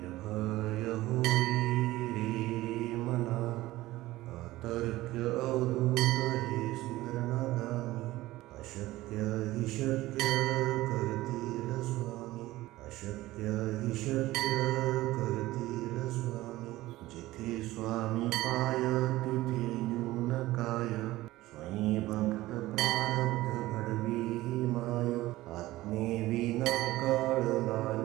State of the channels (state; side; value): quieter; left; 17.3 dB